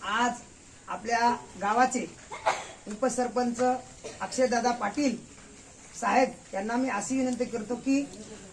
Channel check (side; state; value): both; identical; correlation 1.00